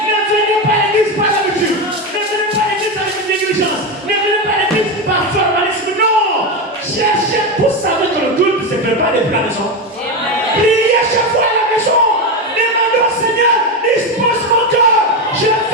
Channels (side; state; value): both; normal; correlation 0.14